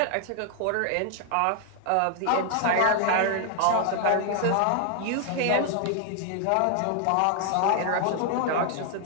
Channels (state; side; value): different; both; correlation 0.00